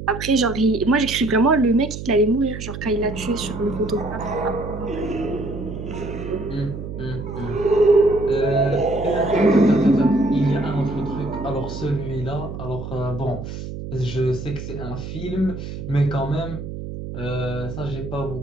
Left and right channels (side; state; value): right; noise; hum, 8 dB below the sound